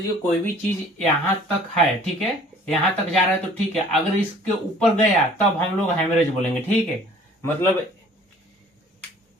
कोई भी चीज यहां तक है, ठीक है, यहां तक जा रहा है तो ठीक है, अगर इसके ऊपर गया तब हम लोग हेमरेज बोलेंगे। ठीक है, मतलब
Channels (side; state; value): both; normal; correlation 0.52